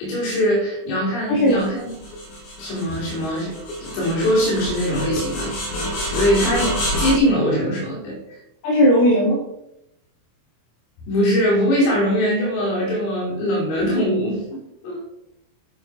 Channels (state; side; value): late; right; 25 ms